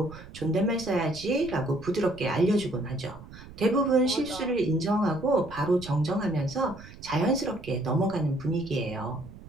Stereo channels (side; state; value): right; noise; rumble, 17 dB below the sound